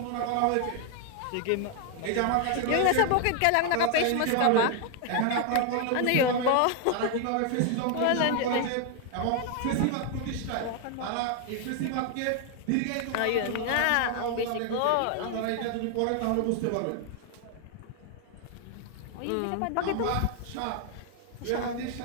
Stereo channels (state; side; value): different; both; correlation 0.00